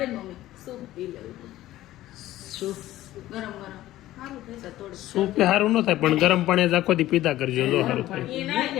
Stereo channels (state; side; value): quieter; right; 15.1 dB